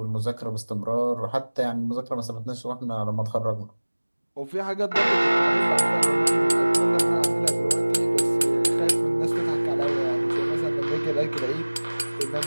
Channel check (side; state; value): both; inverted; correlation -1.00